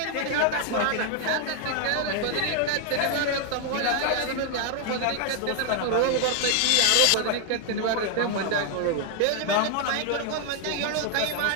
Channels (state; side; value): different; both; correlation 0.00